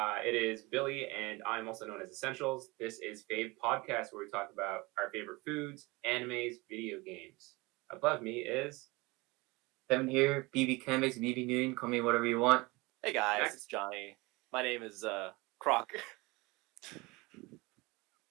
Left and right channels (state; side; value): quieter; left; 23.6 dB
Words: is Billy, and I'm also known as Essentials. This is Fave Podcast, where we talk about our favorite foods, animes, video games. Above me is Kevin here, BB Canvas, BB Noon, call me whatever you want. Hey guys, Max. it's Johnny. My name is Croc.